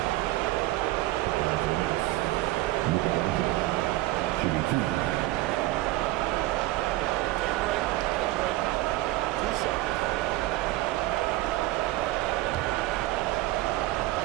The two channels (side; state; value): left; quieter; 17.6 dB